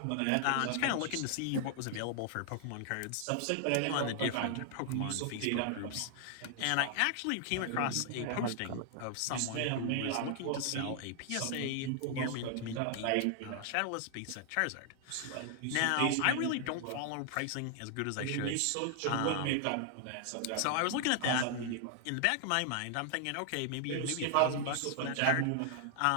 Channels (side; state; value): both; different; correlation 0.00